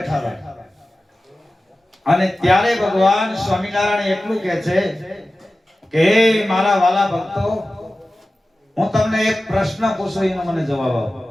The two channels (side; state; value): both; normal; correlation 0.95